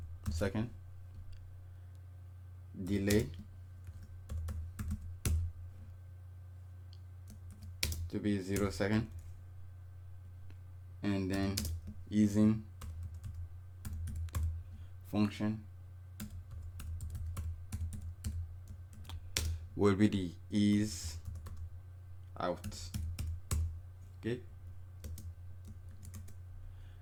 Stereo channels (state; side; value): identical; both; correlation 1.00